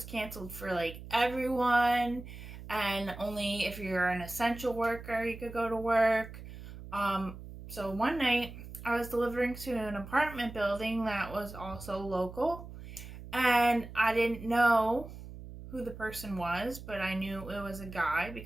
canceled for everyone, and only if you're an essential worker you could go to work. So one night I was delivering to an apartment building that was also local, and I didn't know who the person was, but I knew it was a guy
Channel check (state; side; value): noise; right; hum, 13 dB below the sound